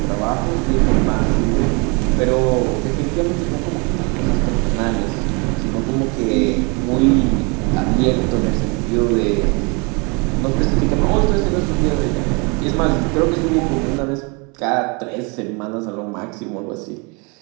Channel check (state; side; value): quieter; left; 30.9 dB